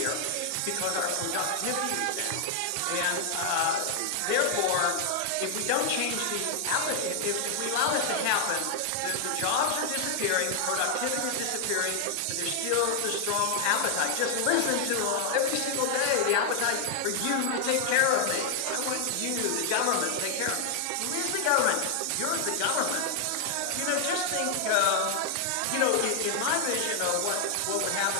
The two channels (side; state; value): both; different; correlation 0.00